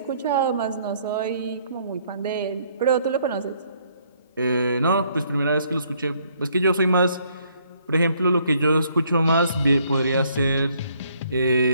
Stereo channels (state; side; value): inverted; both; correlation -0.67